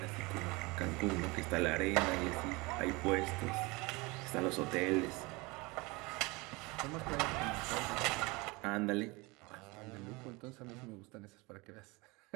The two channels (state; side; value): quieter; left; 25.1 dB